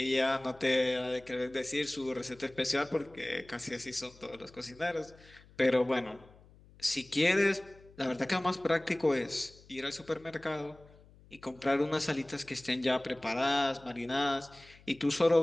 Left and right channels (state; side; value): noise; left; hum, 25 dB below the sound